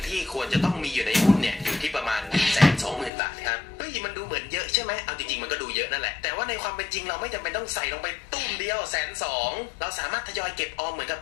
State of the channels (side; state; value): right; drops out; at 3.1 s